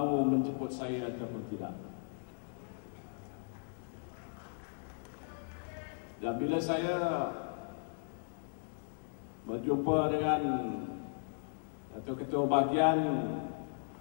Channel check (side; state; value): right; silent; digital silence